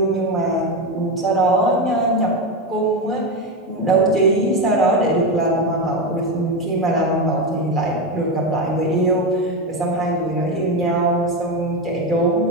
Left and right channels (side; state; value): both; normal; correlation 0.14